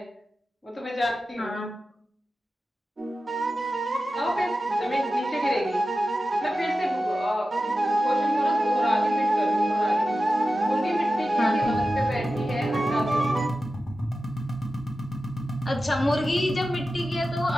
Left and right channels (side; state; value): both; normal; correlation 0.93